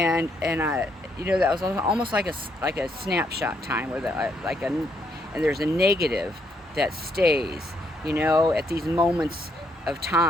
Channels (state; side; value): normal; both; correlation 0.74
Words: that was almost like a snapshot time, where and there's a negative that stays, at these moments of